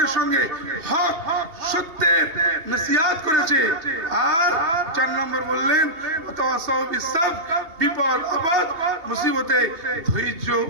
সঙ্গে হক, সত্যের নসিহত করেছে। আর 4 নম্বর বললেন ওয়াতাওয়াসাউ বিস সাবর, বিপদ আপদ মুসিবতে ধৈর্য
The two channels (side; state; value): left; late; 2.8 ms